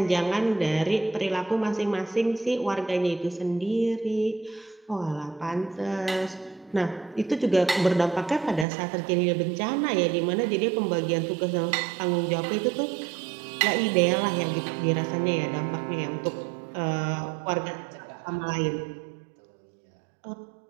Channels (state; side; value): drops out; left; at 8.7 s